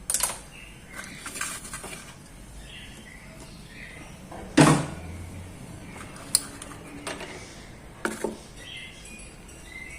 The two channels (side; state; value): both; identical; correlation 1.00